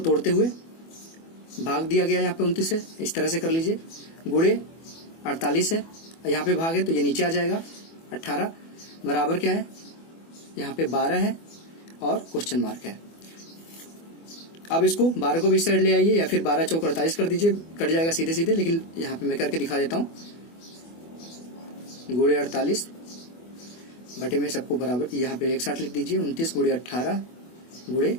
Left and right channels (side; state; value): right; late; 24 ms